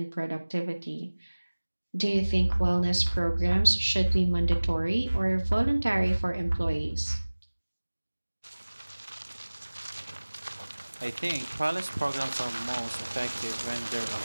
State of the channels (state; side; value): inverted; both; correlation -1.00